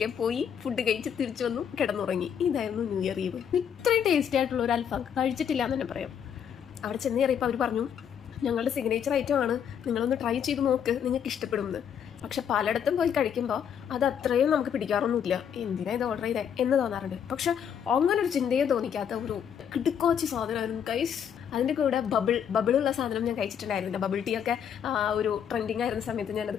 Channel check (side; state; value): right; quieter; 8.3 dB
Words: പോയി, ഫുഡ് കഴിച്ച് തിരിച്ചു വന്നു, കിടന്നുറങ്ങി. ഇതായിരുന്നു ന്യൂ ഇയർ ഈവ്. ഇത്രയും ടേസ്റ്റി ആയിട്ടുള്ള ഒരു അൽഫാം കഴിച്ചിട്ടില്ല എന്ന് തന്നെ പറയാം. അവിടെ ചെന്ന് കയറിയപ്പോൾ അവർ പറഞ്ഞു, ഞങ്ങളുടെ സിഗ്നേച്ചർ ഐറ്റം ആണ്, നിങ്ങളൊന്ന് ട്രൈ ചെയ്ത് നോക്ക്, നിങ്ങൾക്ക് ഇഷ്ടപ്പെടുമെന്ന്. പക്ഷെ പലയിടത്തും പോയി കഴിക്കുമ്പോൾ അത് അത്രയും നമുക്ക് പിടിക്കാറൊന്നുമില്ല. എന്തിനാ ഇത് ഓർഡർ ചെയ്തേ എന്ന് തോന്നാറുണ്ട്. പക്ഷെ അങ്ങനെ ഒരു ചിന്തയെ തോന്നിക്കാത്ത ഒരു കിടുക്കോച്ചി സാധനമായിരുന്നു ഗൈസ്. അതിൻ്റെ കൂടെ ബബിളുള്ള സാധനം ഞാൻ കഴിച്ചിട്ടുണ്ടായിരുന്നില്ല. ബബിൾ ടീ ഒക്കെ ഒരു ട്രെൻഡിങ് ആയിരുന്ന സമയത്ത് ഞാനത്